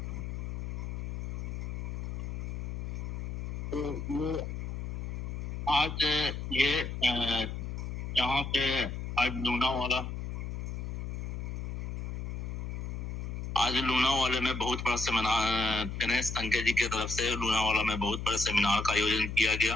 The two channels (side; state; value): left; noise; hum, 4 dB below the sound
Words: वो आज ये यहाँ पे आज लूनावाला में बहुत बड़ा सेमिनार गणेश संके जी की तरफ से लूनावाला में बहुत बड़े सेमिनार का आयोजन किया गया